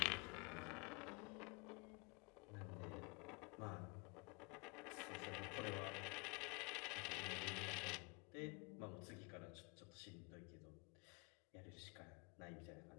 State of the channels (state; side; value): quieter; right; 29.5 dB